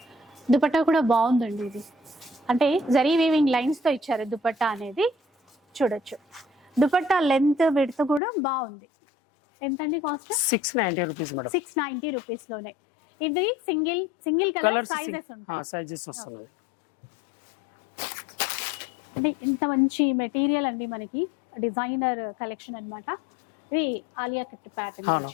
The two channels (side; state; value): right; drops out; at 8.2 s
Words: దుపట్టా కూడా బాగుందండి. ఇది అంటే జరీ వీవింగ్ లైన్స్ తో ఇచ్చారు దుపట్టా అనేది. చూడొచ్చు దుపట్టా లెంత్ విడ్త్ కూడా బాగుంది. ఎంతండి కాస్ట్? 690 rupees madam. 690 రూపీస్ లోనే. ఇది సింగిల్ కలర్ సైజెస్ ఉంటాయి. సైజెస్ వస్తున్నాయి. అంటే ఇంత మంచి మెటీరియల్ అండి మనకి. డిజైనర్ కలెక్షన్ అన్నమాట. ఇది ఆలియా కట్ ప్యాటర్న్ అవును,